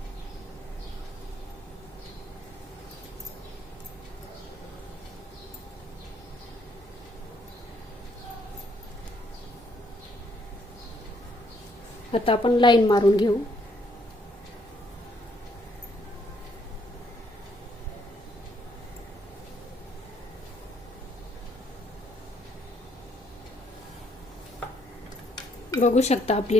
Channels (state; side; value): normal; both; correlation 0.70